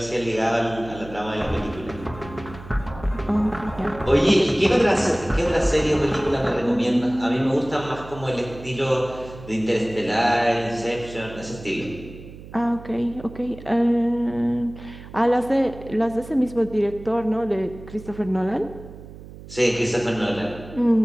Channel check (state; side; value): noise; right; hum, 16 dB below the sound